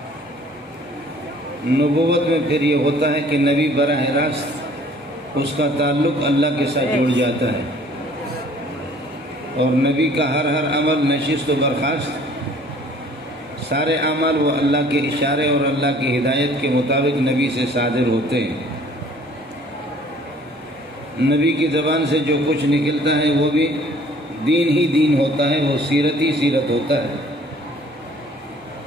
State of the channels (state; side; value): normal; both; correlation 0.54